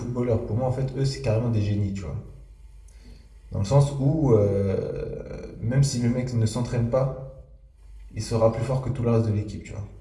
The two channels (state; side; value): identical; both; correlation 1.00